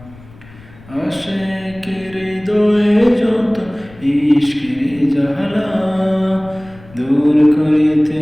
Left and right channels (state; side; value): noise; left; rumble, 22 dB below the sound